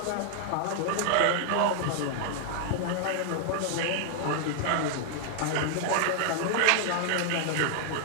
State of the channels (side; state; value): both; different; correlation 0.00